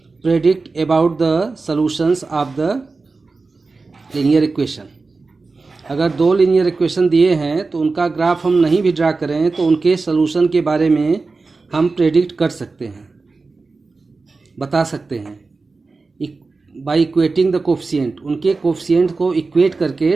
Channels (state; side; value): quieter; left; 3.9 dB